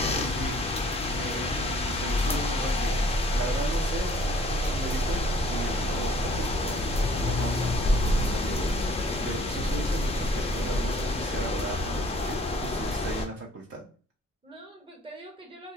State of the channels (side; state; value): both; normal; correlation 0.58